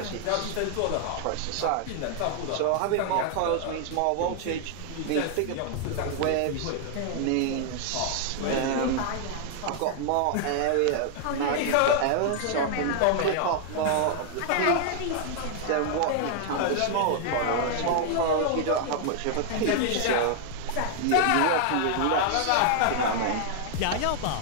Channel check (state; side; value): different; both; correlation 0.00